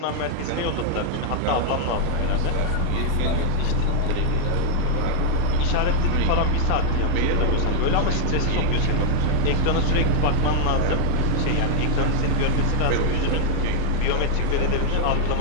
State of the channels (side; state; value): both; different; correlation 0.00